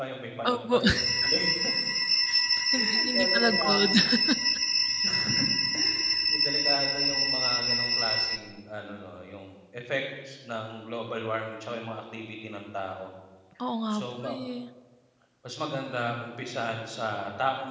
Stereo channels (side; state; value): both; identical; correlation 1.00